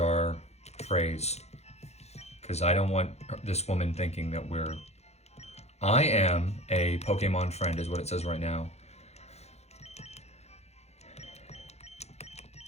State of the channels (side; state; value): right; late; 0.31 ms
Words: phrase. Because I don't want this woman thinking that we're... I am a Pokemon friend, is what it says right now.